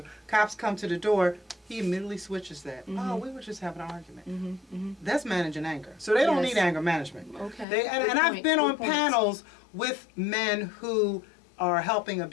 Cops come to the door. He immediately switches that. Oh, we were just having an argument. That's managing anger. So they don't need anger management. Okay. And I've been on panels with men who are helping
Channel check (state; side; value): drops out; right; at 7.7 s